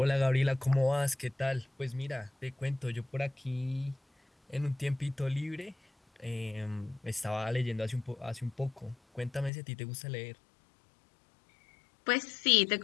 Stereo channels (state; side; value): drops out; right; at 9.5 s